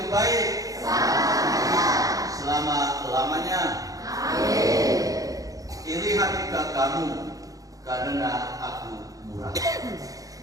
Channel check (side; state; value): left; late; 0.17 ms